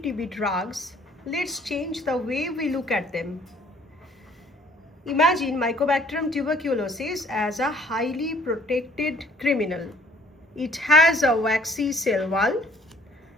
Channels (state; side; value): normal; both; correlation 0.57